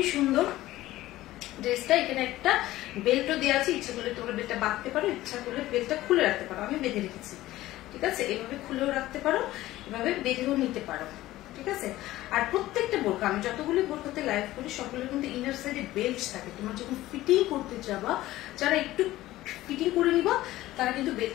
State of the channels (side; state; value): right; quieter; 16.1 dB